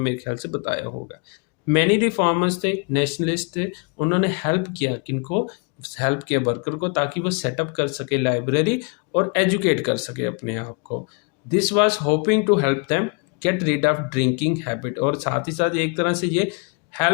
ख्याल से बताया होगा। मैनी रिफॉर्मर्स थे, नेशनलिस्ट थे, उन्होंने हेल्प किया किनको, हेल्प किया वर्कर को, ताकि वो सेटअप कर सके लाइब्रेरी और एजुकेट कर सके अपने आप को। This was hoping to help them get rid of drinking habit, और साथ ही साथ एक तरह से ये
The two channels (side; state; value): right; quieter; 35.8 dB